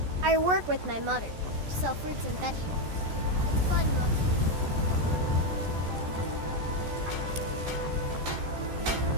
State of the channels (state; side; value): late; left; 14 ms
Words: I work with my mother, sell fruits and vegetables. It's fun mostly.